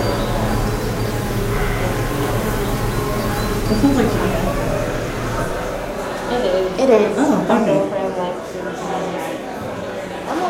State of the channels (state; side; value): identical; both; correlation 1.00